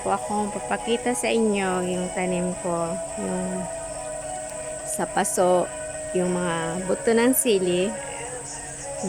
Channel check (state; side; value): identical; both; correlation 1.00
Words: po akong papakita sa inyo yung tanim ko, yung sa paso, yung mga buto ng sili